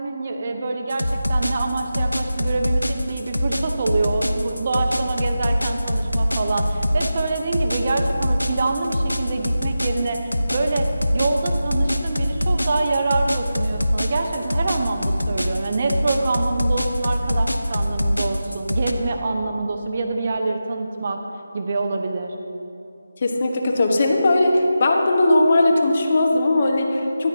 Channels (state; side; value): inverted; both; correlation -0.91